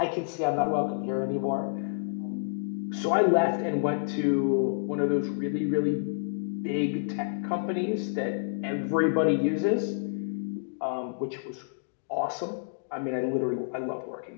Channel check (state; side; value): silent; right; digital silence